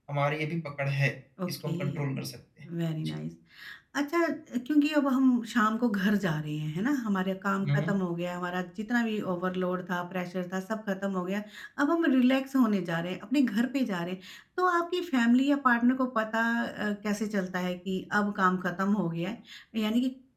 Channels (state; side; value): identical; both; correlation 1.00